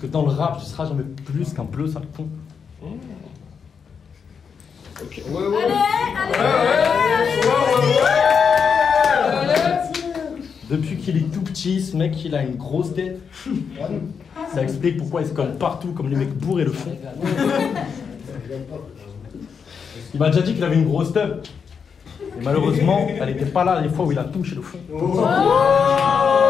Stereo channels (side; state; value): right; quieter; 6.4 dB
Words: dans le rap, tu seras jamais plus qu'un bleu sale con. Ok. Depuis qu'il est tout petit, ce mec, il a une grosse tête. Ça explique pourquoi il se colle partout comme les mecs bourrés le font. Il m'a déjà dit qu'il avait une grosse teub. Et malheureusement, elle n'était pas là les fois où il a touché le fond.